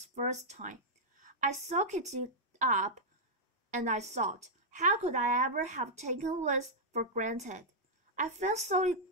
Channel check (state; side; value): normal; both; correlation -0.07